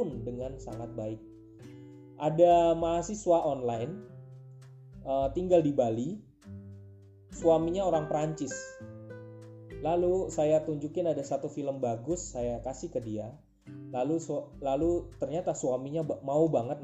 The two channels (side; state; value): both; identical; correlation 1.00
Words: dengan sangat baik. Ada mahasiswa online tinggal di Bali, suaminya orang Prancis. Lalu saya tunjukin ada satu film bagus, saya kasih ke dia. Lalu ternyata suaminya mau banget